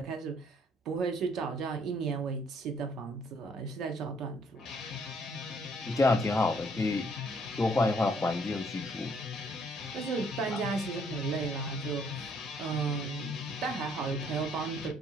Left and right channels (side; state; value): both; normal; correlation 0.65